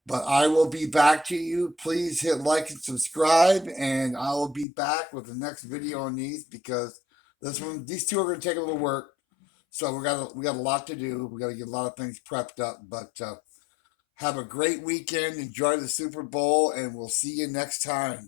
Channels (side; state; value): right; drops out; at 4.7 s